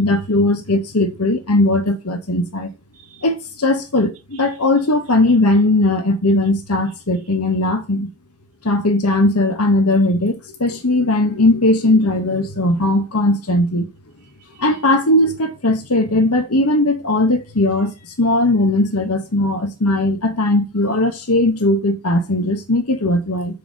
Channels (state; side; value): normal; both; correlation 0.28